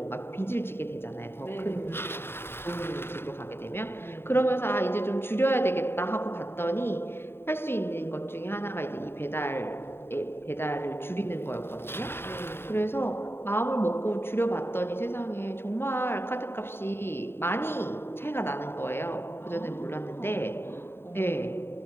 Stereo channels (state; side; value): late; right; 0.11 ms